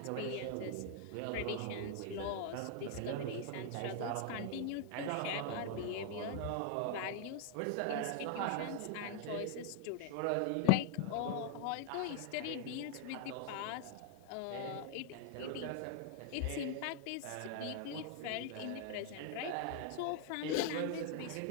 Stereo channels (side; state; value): both; different; correlation 0.00